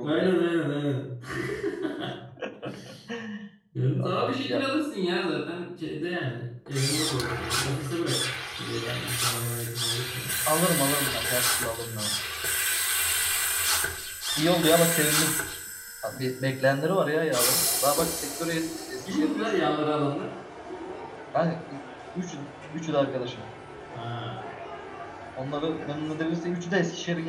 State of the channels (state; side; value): identical; both; correlation 1.00